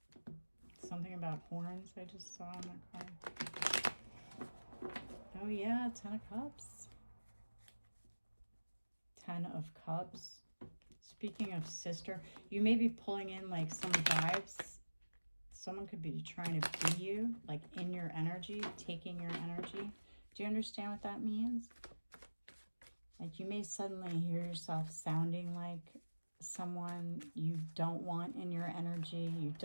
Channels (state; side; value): inverted; both; correlation -1.00